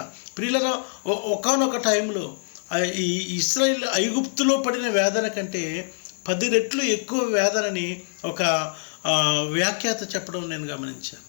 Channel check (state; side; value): silent; right; digital silence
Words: ప్రియులరా, ఒకానొక టైంలో ఈ ఇశ్రాయేలు ఐగుప్తులో పడిన వేదన కంటే 10 రెట్లు ఎక్కువ వేదనని ఒక వ్యాఖ్యాత చెప్పడం నేను గమనించాను.